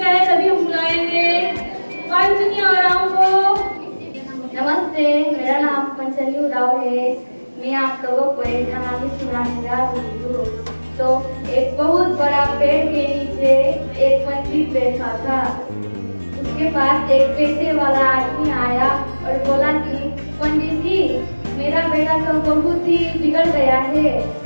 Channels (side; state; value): both; inverted; correlation -1.00